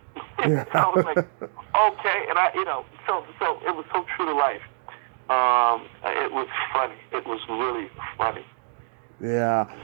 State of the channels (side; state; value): left; silent; digital silence